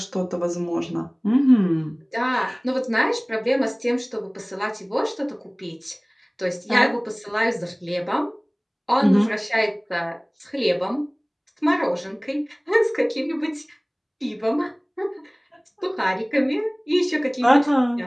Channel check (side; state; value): both; identical; correlation 1.00